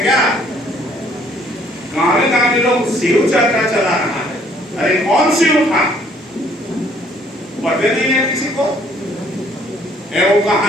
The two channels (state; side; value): normal; both; correlation 0.62